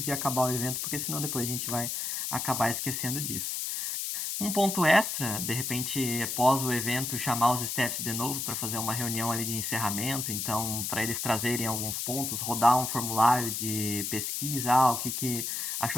de acabar o evento, porque senão depois a gente vai acabar esquecendo disso. Um ponto extra, de repente, após o evento, chamar os staffs de novo para fazer uma reunião ali de encerramento, então, para eles trazerem alguns pontos, rodar um formulário de pesquisa, o que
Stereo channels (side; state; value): left; noise; hiss, 2 dB below the sound